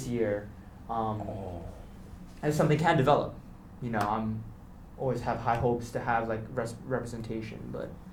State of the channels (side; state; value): both; identical; correlation 1.00